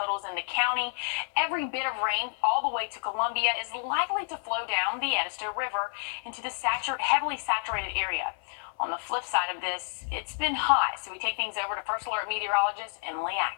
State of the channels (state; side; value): silent; right; 58 dB below the other